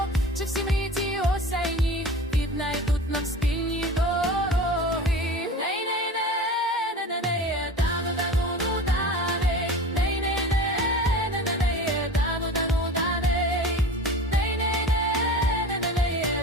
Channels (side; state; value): both; normal; correlation 0.35